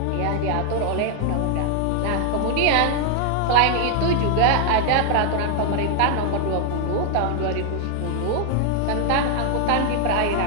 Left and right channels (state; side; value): different; both; correlation 0.00